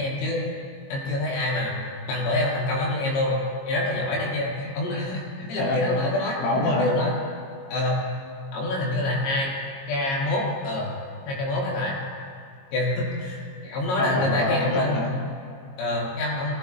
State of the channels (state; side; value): late; right; 22 ms